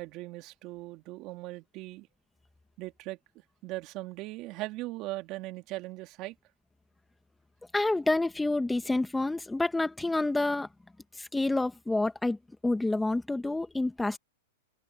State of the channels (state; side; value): normal; both; correlation 0.93